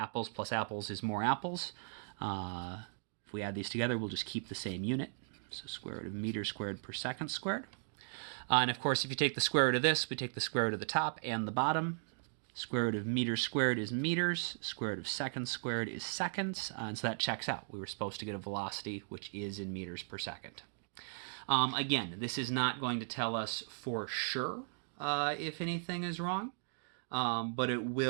plus apples is more apples, if we add these together, we'll just keep the same unit. So square root of meters squared per second squared. And of course, if you take the square root of this, we take the square root of the top and the bottom. Square root of meters squared is meters. Square root of seconds squared is seconds. And so that checks out. We were supposed to get a velocity, which is in meters per second. Again, this is not going to tell us for sure if anything is wrong, but it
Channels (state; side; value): silent; left; digital silence